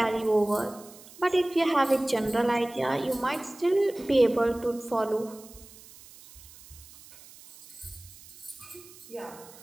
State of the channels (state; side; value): noise; right; hiss, 20 dB below the sound